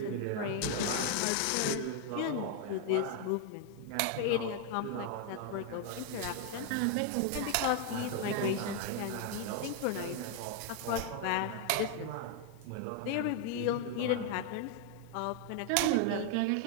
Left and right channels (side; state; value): both; different; correlation 0.00